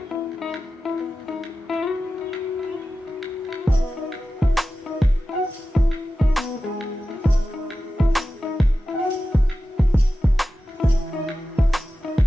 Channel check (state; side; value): normal; both; correlation 0.93